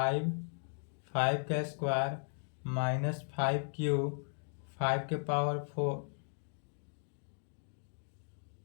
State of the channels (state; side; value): silent; right; 53 dB below the other